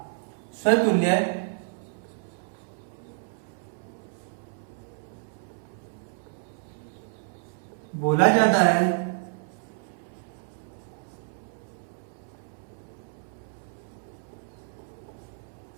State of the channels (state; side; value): silent; left; 58 dB below the other